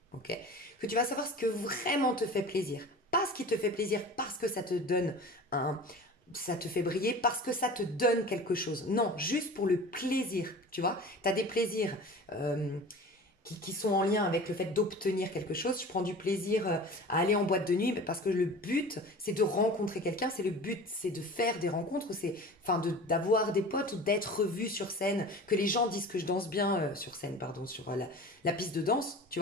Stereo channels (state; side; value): normal; both; correlation 0.38